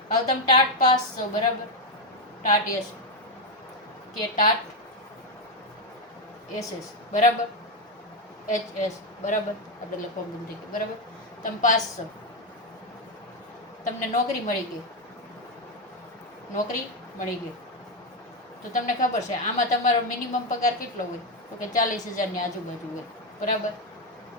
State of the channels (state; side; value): normal; both; correlation 0.07